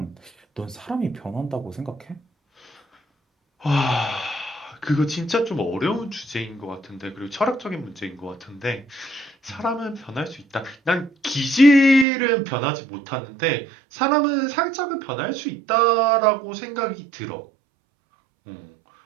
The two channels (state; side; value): drops out; left; at 12.1 s